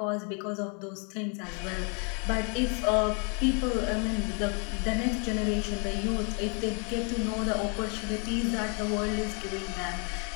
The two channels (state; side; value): quieter; right; 36.6 dB